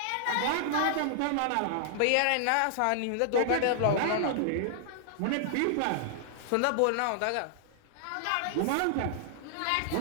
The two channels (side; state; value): both; different; correlation -0.01